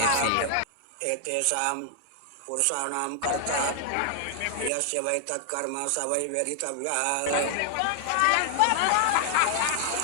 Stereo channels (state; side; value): different; both; correlation 0.00